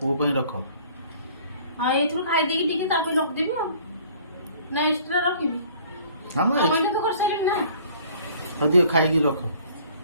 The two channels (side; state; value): both; inverted; correlation -0.53